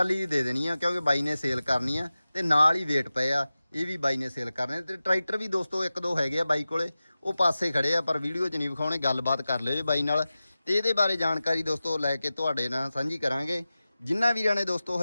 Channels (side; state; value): both; inverted; correlation -0.95